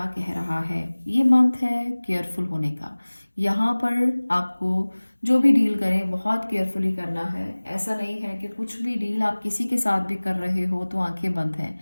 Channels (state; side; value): inverted; both; correlation -1.00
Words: कह रहा है। ये मंथ है केयरफुल होने का। यहाँ पर आपको जो भी डील करें बहुत केयरफुली करना है। ऐसा नहीं है कि कुछ भी डील आप किसी के साथ भी कर रहे हो तो आंखें बंद हैं,